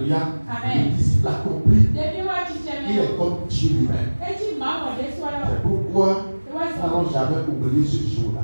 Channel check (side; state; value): both; inverted; correlation -1.00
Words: Le disciple accompli, il est comme Dieu lui-même. C'est pourquoi nous n'allons jamais oublier ce jour-là